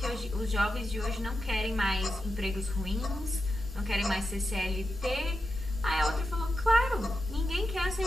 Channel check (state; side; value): normal; both; correlation 0.88